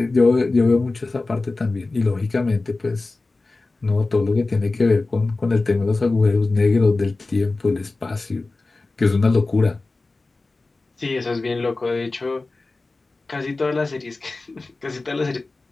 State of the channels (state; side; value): quieter; right; 3.4 dB